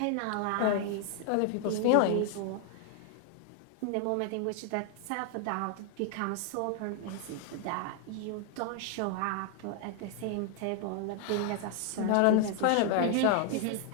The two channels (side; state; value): both; different; correlation 0.00